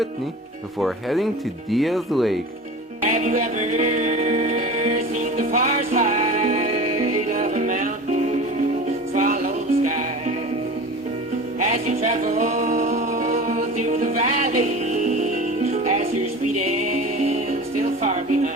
before heading to Diaz Lake. Have you ever seen the far side of a mountain swallow the sky? As you travel through the valley, as you're speeding still far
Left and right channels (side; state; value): both; normal; correlation 0.35